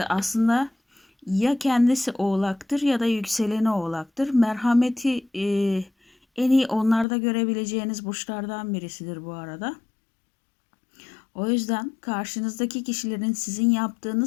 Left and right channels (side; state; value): right; drops out; at 7.1 s